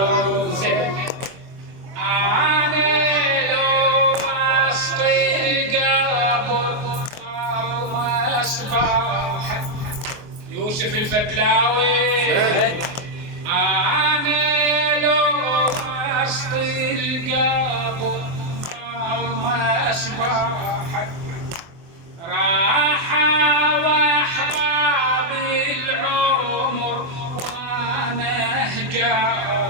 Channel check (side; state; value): left; late; 24 ms